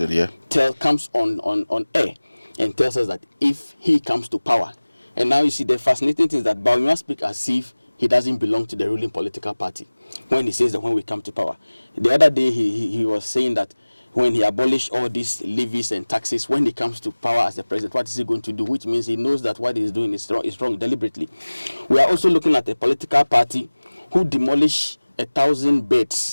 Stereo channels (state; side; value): inverted; both; correlation -1.00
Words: comes on air and tells us that if he comes to power, and now you see the fascinating thing is that Baumia speaks as if he doesn't belong to the ruling political party when he says that when we come to power. The other day he was saying that when he abolished all these levies and taxes, when he comes to power as the president, what is he going to do? Which means he knows that what he's doing is wrong deliberately. We are also looking at a political party who demolished 1,000